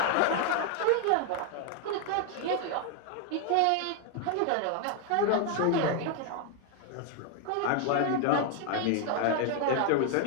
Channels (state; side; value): different; both; correlation 0.01